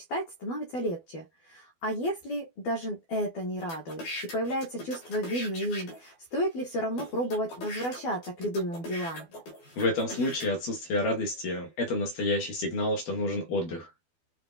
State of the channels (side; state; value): right; late; 12 ms